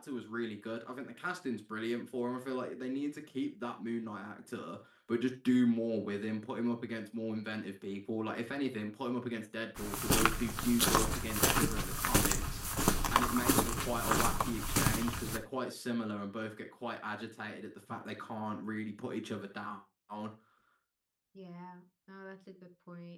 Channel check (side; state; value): both; identical; correlation 1.00